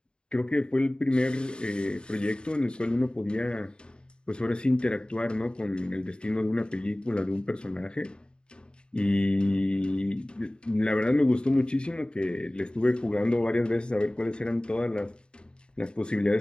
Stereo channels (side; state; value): right; late; 0.051 ms